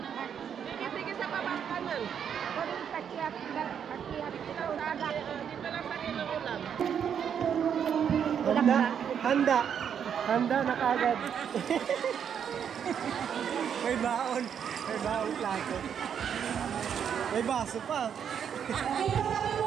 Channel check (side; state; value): left; quieter; 8.1 dB